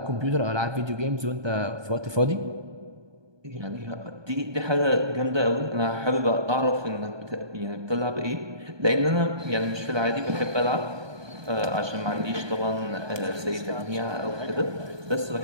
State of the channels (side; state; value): left; late; 1.2 ms